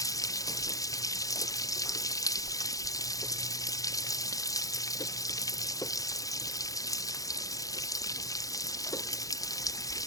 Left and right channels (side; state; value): right; late; 0.17 ms